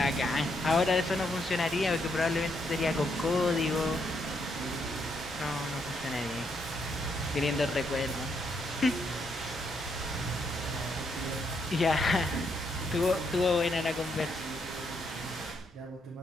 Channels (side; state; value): both; normal; correlation 0.76